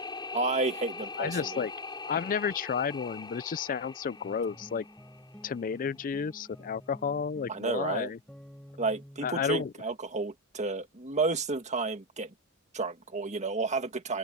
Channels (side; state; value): both; normal; correlation 0.03